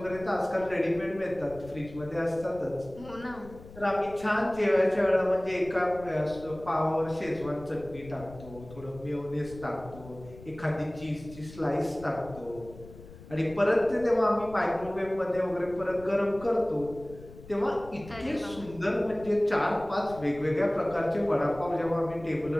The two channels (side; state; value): left; noise; rumble, 17 dB below the sound